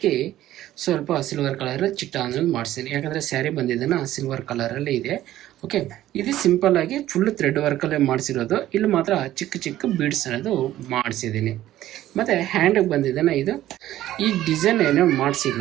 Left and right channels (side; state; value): left; quieter; 13.9 dB